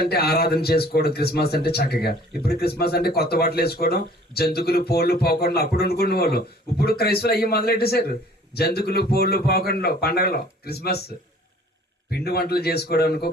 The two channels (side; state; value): both; normal; correlation 0.52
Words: అంటే ఆరాధన చేసుకోవడం, క్రిస్మస్ అంటే చక్కగా. ఇప్పుడు క్రిస్మస్ అంటే కొత్త బట్టలు వేసుకోవడం, జంతుకులు పోళ్ళు పోకుండా అప్పుడు అనుకునే వాళ్ళు. ఇప్పుడు క్రైస్తవులు అయ్యి మొదలెట్టేశారు. జంతుకులు పోళ్ళు పోకుండా పండగలో క్రిస్మస్ పిండి వంటలు చేసుకోవడానికో